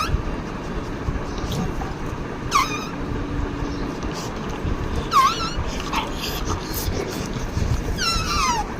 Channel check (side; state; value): both; identical; correlation 1.00